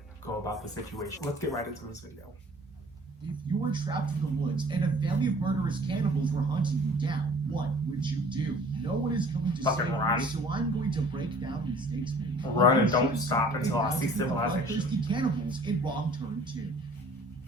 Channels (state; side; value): normal; both; correlation 0.50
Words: go about the situation. Let's get right into this video. If you were trapped in the woods and a family of murderous cannibals were hunting you down, what would you do? No one is going to save you, so I'm going to break down the mistakes made. Run and don't stop until I see civilization. Thirsty cannibals in Wrong Turn 2.